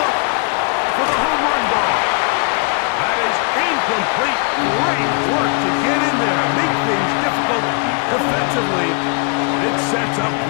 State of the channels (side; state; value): right; quieter; 37.2 dB